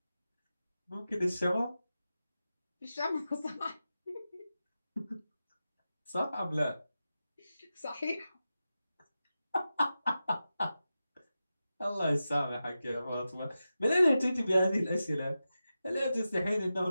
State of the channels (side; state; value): both; inverted; correlation -0.92